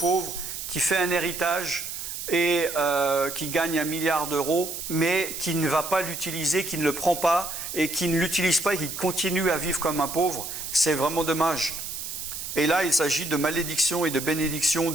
qui fait un héritage et qui gagne 1 milliard d'euros, mais qui ne va pas l'utiliser, qui ne le prend pas et qui ne l'utilise pas et qui continue à vivre comme un pauvre. C'est vraiment dommage. Et là, il s'agit de malédiction et de bénédiction,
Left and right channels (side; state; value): right; noise; hiss, 7 dB below the sound